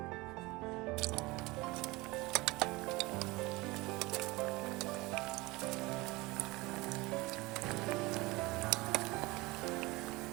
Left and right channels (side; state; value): left; quieter; 22.4 dB